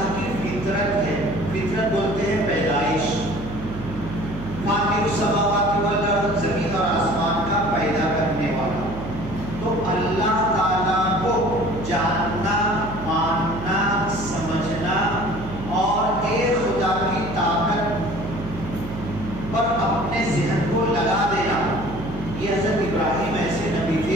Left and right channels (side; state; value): right; noise; hum, 10 dB below the sound